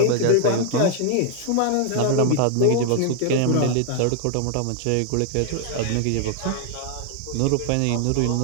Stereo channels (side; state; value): both; different; correlation 0.00